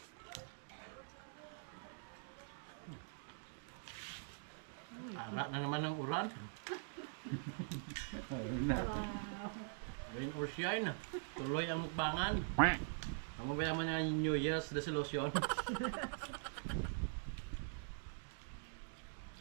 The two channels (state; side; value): silent; left; digital silence